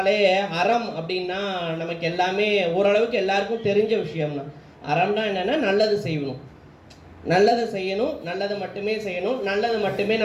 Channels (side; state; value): both; identical; correlation 1.00